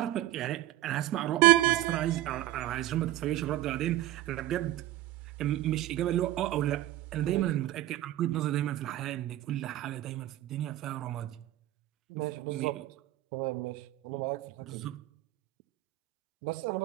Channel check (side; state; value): left; quieter; 14.5 dB